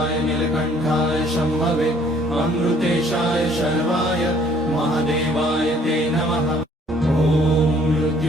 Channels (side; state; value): both; normal; correlation 0.60